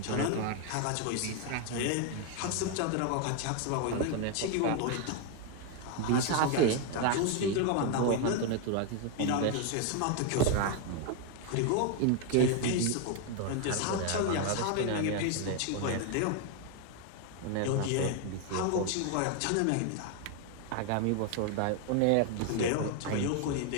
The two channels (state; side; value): different; both; correlation 0.01